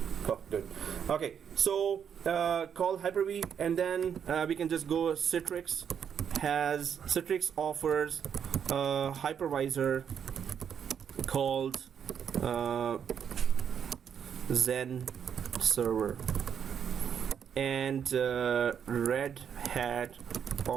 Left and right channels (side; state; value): left; quieter; 7.9 dB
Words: Oh, good. Okay, so call Hyper-V, and then we can just go. Citrix offers a hypervisor called Zen Server. and Red Hat